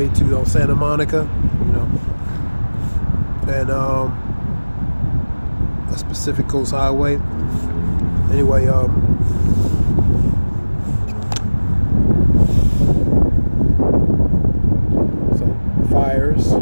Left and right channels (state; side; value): inverted; both; correlation -1.00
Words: to Santa Monica, and that's Pacific Coast Highway. Anyway, so fires,